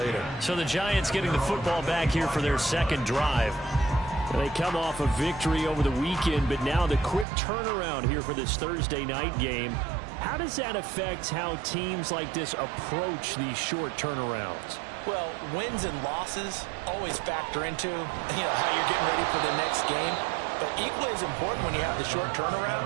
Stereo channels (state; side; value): drops out; left; at 7.2 s